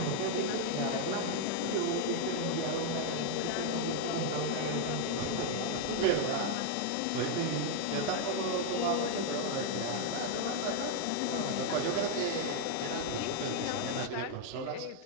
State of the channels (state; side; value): different; both; correlation 0.01